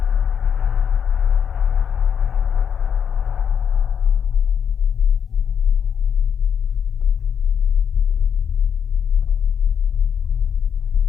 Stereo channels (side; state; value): right; quieter; 7.6 dB